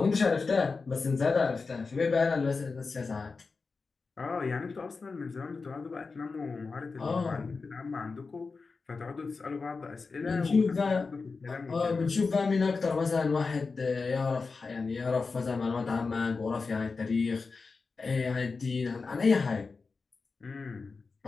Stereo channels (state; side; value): quieter; right; 4.4 dB